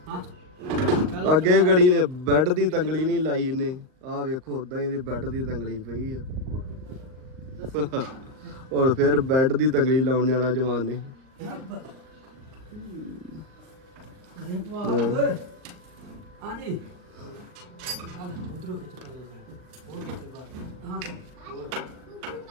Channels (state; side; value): late; left; 39 ms